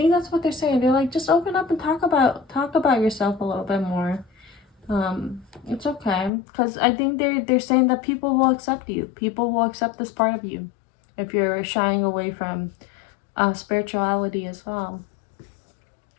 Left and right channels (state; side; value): drops out; right; at 6.3 s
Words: that's what they're saying. They're like, just open up and talk about yourself a little bit more. It's okay, because I think they're saying that people will accept you. People will accept this part of you if you're shying away from spirituality as well.